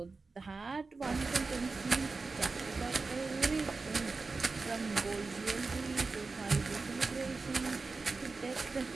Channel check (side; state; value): left; quieter; 4.0 dB